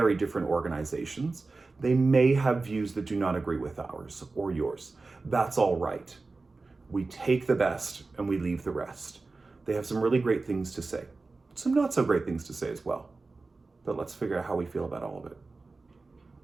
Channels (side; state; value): left; quieter; 3.7 dB